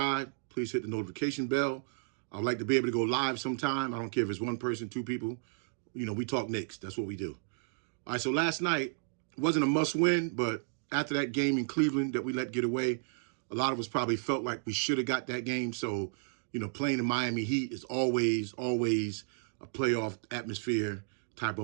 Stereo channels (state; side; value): silent; left; digital silence